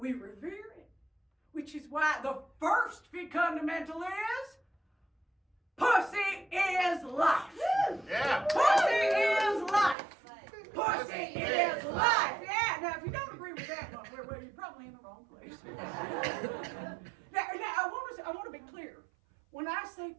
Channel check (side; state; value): left; drops out; at 10.0 s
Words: revere it, which is why the first fundamental is pussy is life. Yeah. Pussy is life. Pussy is life. Yeah. Now, if you don't agree with that one, well, you're probably in the wrong place. now, I want to be clear. When I say